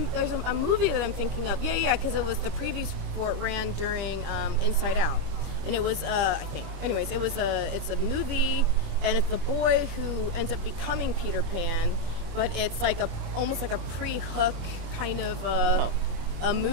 movie that I'm thinking of. Yeah, because it was the previews for it ran during Inside Out. And it was, I think. Anyways, it's a movie, and it's the boy who ends up becoming Peter Pan, but it's like almost like a pre-Hook kind of a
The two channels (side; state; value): left; late; 25 ms